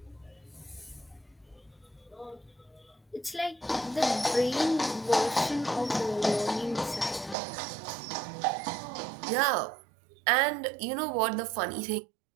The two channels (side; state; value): left; drops out; at 7.4 s